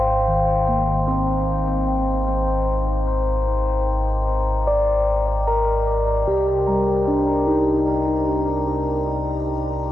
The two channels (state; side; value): normal; both; correlation 0.90